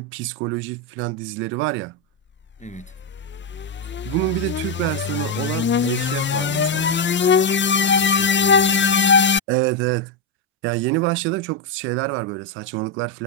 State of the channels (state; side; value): normal; both; correlation 0.03